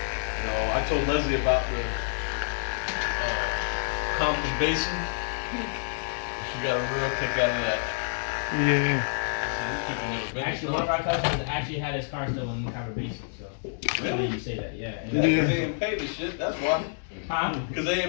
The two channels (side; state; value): right; silent; digital silence